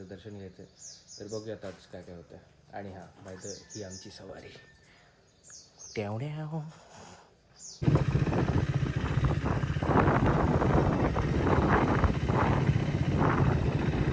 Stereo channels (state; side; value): identical; both; correlation 1.00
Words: दर्शन घ्यायचं आहे. तर बघूयात आज काय काय होतं. आणि हां, माहिती ही आमची सवारी.